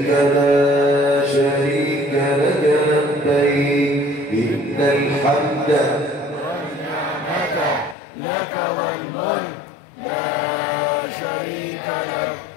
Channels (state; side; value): drops out; right; at 8.0 s